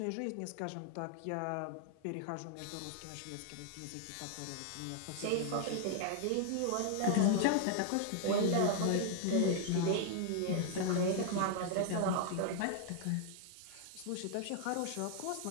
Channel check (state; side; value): different; both; correlation 0.00